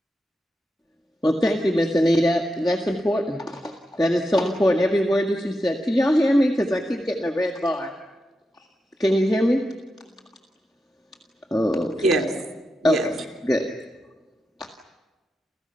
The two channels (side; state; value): both; normal; correlation 0.88